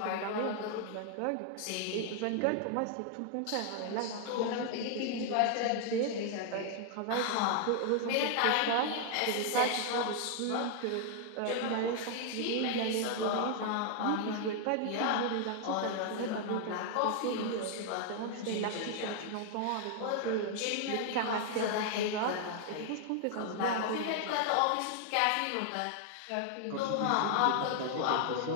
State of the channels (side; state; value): both; different; correlation 0.00